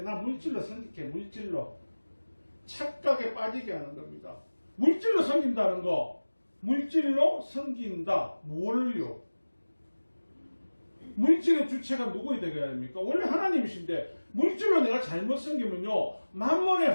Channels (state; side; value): inverted; both; correlation -1.00